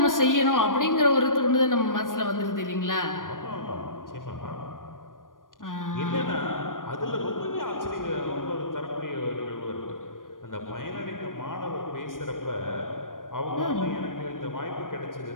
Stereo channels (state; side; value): late; right; 0.90 ms